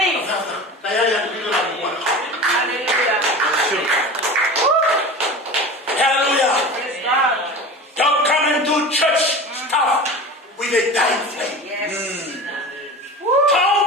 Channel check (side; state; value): both; normal; correlation 0.33